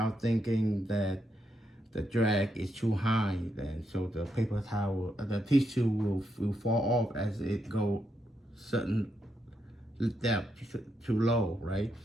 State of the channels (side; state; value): both; normal; correlation 0.80